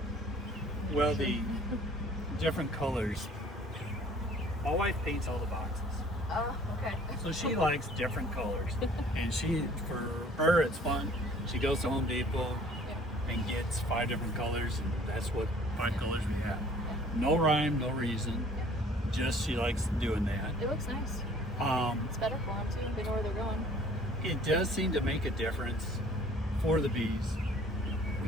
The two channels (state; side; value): normal; both; correlation 0.54